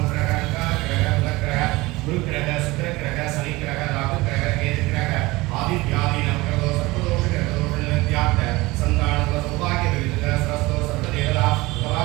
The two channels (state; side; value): quieter; left; 21.2 dB